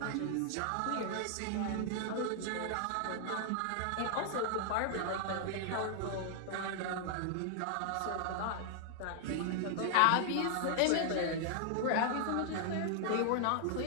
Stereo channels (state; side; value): different; both; correlation -0.01